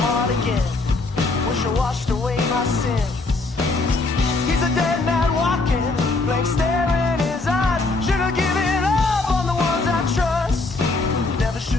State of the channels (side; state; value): right; quieter; 3.4 dB